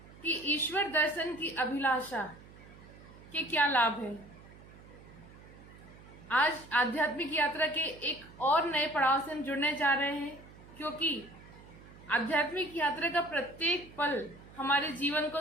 कि ईश्वर दर्शन की अभिलाषा के क्या लाभ हैं। आज आध्यात्मिक यात्रा के एक और नए पड़ाव से हम जुड़ने जा रहे हैं, क्योंकि आध्यात्मिक यात्रा का प्रत्येक पल हमारे जीवन को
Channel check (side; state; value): right; noise; hum, 20 dB below the sound